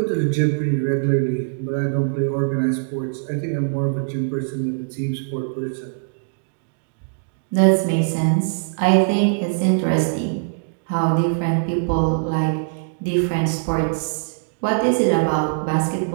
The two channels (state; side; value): silent; left; digital silence